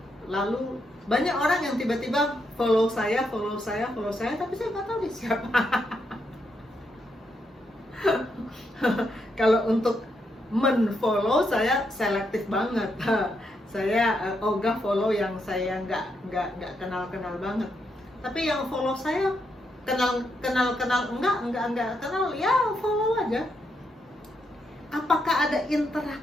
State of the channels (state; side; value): normal; both; correlation 0.80